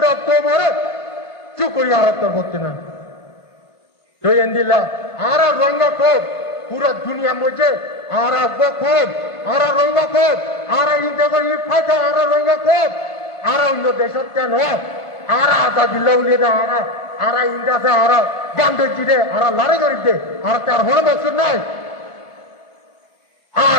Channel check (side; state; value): right; late; 1.5 ms